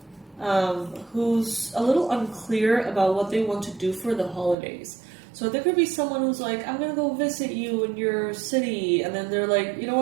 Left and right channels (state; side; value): drops out; left; at 4.5 s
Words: who's a little unclear about what they want to do for the holidays. So there could be someone who's like, I'm going to go visit you in your city. And then they're like, you know